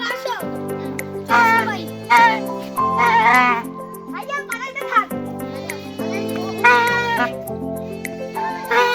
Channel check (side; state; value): both; identical; correlation 1.00